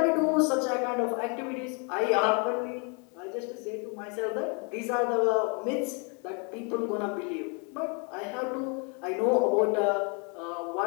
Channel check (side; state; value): right; quieter; 35.4 dB